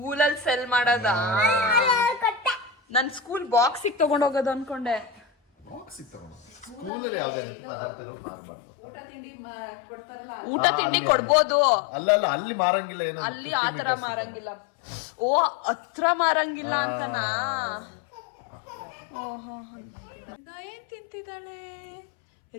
ಸೆಲ್ ಮಾಡೋದಾ? ನನ್ ಸ್ಕೂಲ್ ಬಾಕ್ಸಿಗೆ ತಗೊಂಡೋಗೋದು ಅನ್ಕೊಂಡೆ. ಊಟ ತಿಂಡಿ ಕೊಡ್ಬೋದು. ಅಲ್ಲ ಅಲ್ಲಿ ಮಾರಂಗಿಲ್ಲ. ಏನೋ ಅಲ್ಲಿ ಆತರ ಮಾರಂಗಿಲ್ಲ. ಓ, ಹತ್ರ ಮಾರಂಗಿಲ್ಲ ಅಂತನಾ? ಓಹೋ, ರಿದಾ ಏನ್ ತಿಂತಿದ್ದಾಳೆ?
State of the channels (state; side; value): drops out; right; at 6.9 s